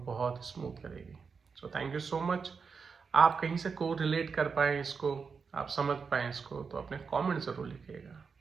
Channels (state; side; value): quieter; left; 5.5 dB